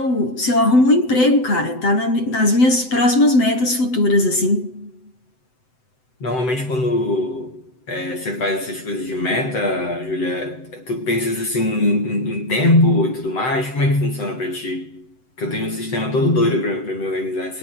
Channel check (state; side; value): late; right; 7.9 ms